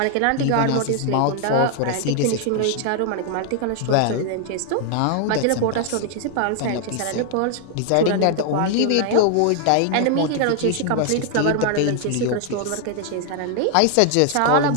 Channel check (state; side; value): different; both; correlation 0.00